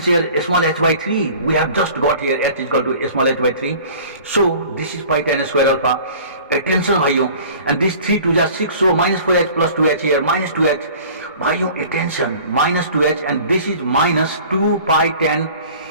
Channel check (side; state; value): both; inverted; correlation -0.46